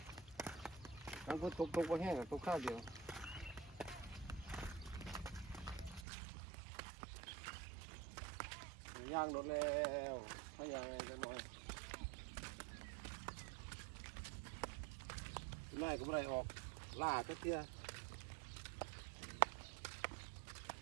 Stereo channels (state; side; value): drops out; left; at 6.1 s